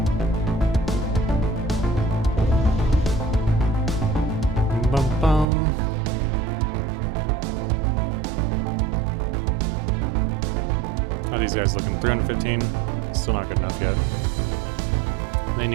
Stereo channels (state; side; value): drops out; left; at 5.5 s